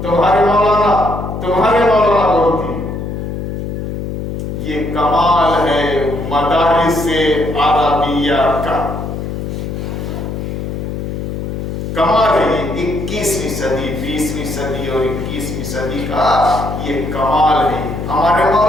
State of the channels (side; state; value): left; noise; hum, 5 dB below the sound